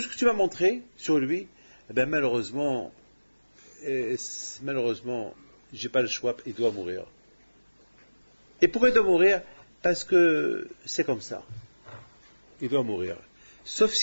ce que tu m'as montré sur lui, eh ben malheureusement, j'ai pas le choix, il doit mourir. Et pourquoi il doit mourir? Parce que c'est comme ça. Il doit mourir. Sauf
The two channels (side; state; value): both; inverted; correlation -1.00